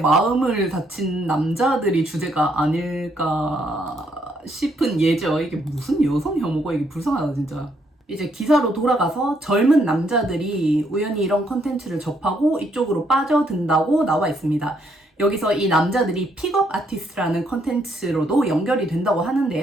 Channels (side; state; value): both; normal; correlation 0.72